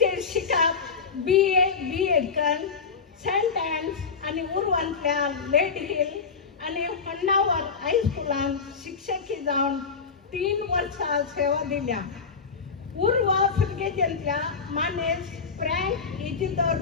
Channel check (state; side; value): quieter; right; 5.4 dB